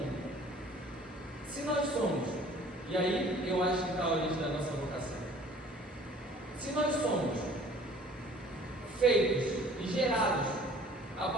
Se nós somos, e aí eu acho que está a origem da nossa vocação. Se nós somos feitos e gerados a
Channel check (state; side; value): normal; both; correlation 0.51